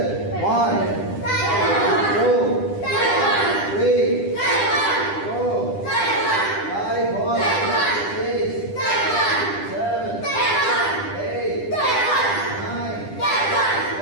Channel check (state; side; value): late; right; 10 ms